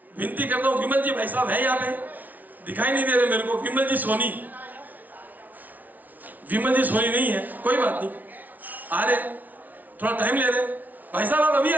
विनती करता हूँ, विमल जी भाई साहब है यहाँ पे, दिखाई नहीं दे रहे मेरे को। विमल जी सोनी, विमल जी सोनी नहीं है, कोई बात नहीं, आ रहे, थोड़ा टाइम ले रहे। भाई साहब आप अभी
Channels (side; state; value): left; late; 0.078 ms